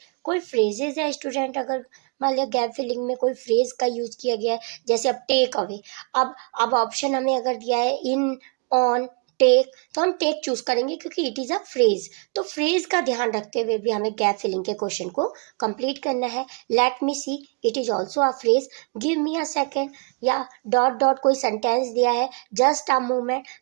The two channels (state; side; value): quieter; left; 35.2 dB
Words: कोई फ्रेजेज है स्टूडेंट, अगर मान लिया गैप फिलिंग में कोई फ्रेज का यूज किया गया है, जैसे अब टेक अवे। अब ऑप्शन हमें अगर दिया है इन, ऑन, टेक, तो हम टेक चूज करेंगे क्योंकि इट इज़ अ फ्रेज। तो फ्रेज का ध्यान रखते हुए भी हमें गैप फिलिंग के क्वेश्चन को कंप्लीट करना है। Let me see, it is also a phrase. Give me a second, या डॉट डॉट कोई सेंटेंस दिया है, जस्ट अ मूवमेंट,